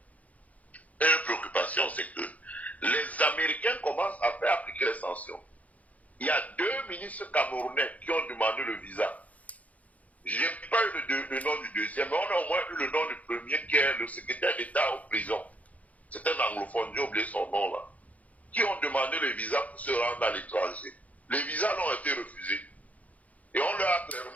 une préoccupation, c'est que les Américains commencent à faire appliquer les sanctions. Il y a 2 ministres camerounais qui ont demandé le visa. Je n'ai pas eu le nom du deuxième, mais on a au moins eu le nom du premier qui est le secrétaire d'État en prison. C'est un anglophone, j'ai oublié son nom là. Qui ont demandé le visa pour se rendre à l'étranger. Les visas ont été refusés. Et on leur a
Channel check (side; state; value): right; late; 0.071 ms